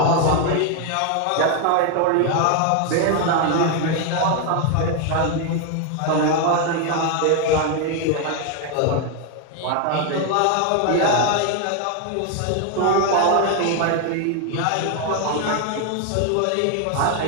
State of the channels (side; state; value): both; different; correlation 0.01